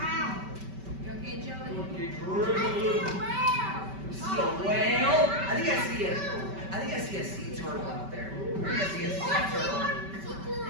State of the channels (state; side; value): late; left; 5.2 ms